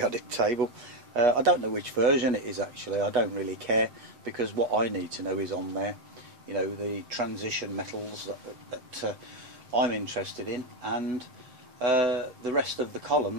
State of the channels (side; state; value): left; late; 8.2 ms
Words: table. I don't know which version it is actually. I don't really care, because what I need to know is on there. You know, the transition metals that I'm interested in, and the rest of the